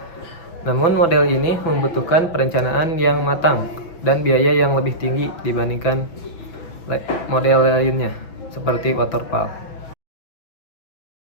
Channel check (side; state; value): right; late; 6.0 ms